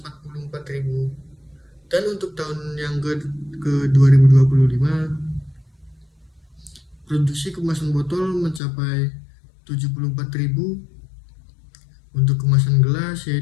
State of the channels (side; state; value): right; drops out; at 8.6 s